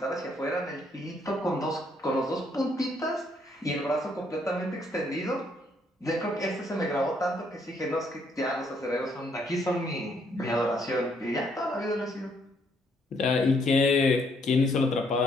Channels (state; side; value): normal; both; correlation 0.70